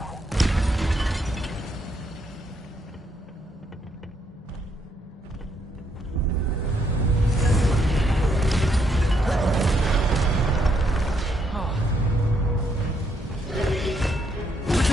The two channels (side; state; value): both; normal; correlation 0.74